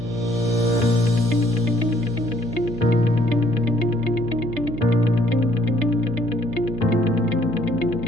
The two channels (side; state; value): right; noise; hum, 12 dB below the sound